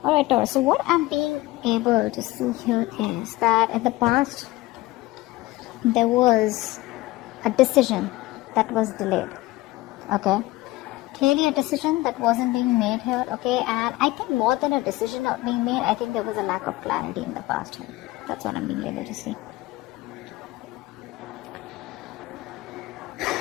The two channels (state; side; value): quieter; right; 18.7 dB